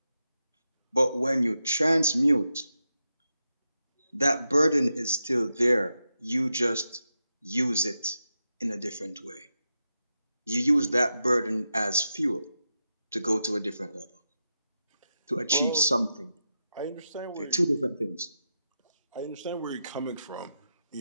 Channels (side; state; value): both; inverted; correlation -0.88